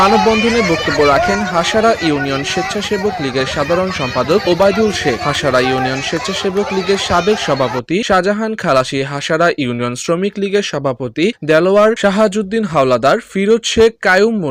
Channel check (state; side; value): identical; both; correlation 1.00